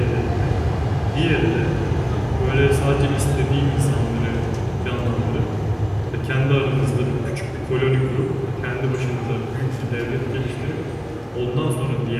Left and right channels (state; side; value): identical; both; correlation 1.00